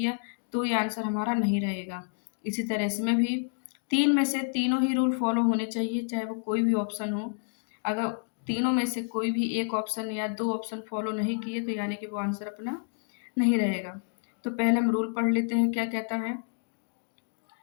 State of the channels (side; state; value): right; silent; 58 dB below the other